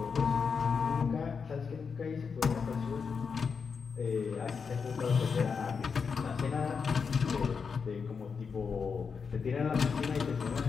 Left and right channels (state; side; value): quieter; right; 5.7 dB